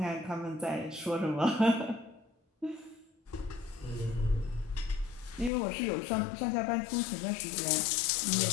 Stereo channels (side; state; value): right; drops out; at 5.5 s